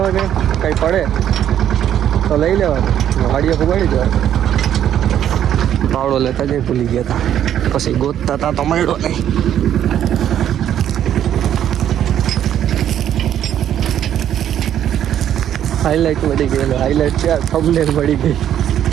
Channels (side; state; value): left; quieter; 10.4 dB